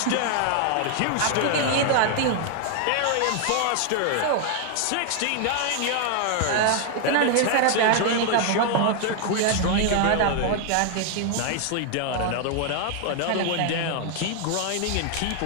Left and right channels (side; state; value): both; different; correlation 0.00